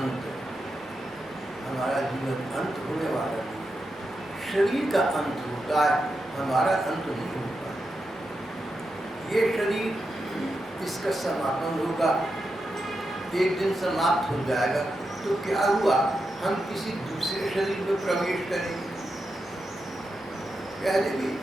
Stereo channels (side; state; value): both; normal; correlation 0.87